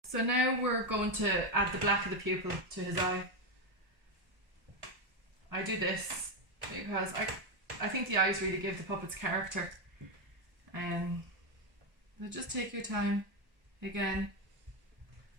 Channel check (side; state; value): left; late; 1.1 ms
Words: So now we're going to add the black of the pupil to his eye. I do this because I think the eyes really give the puppets character. So just take your time again.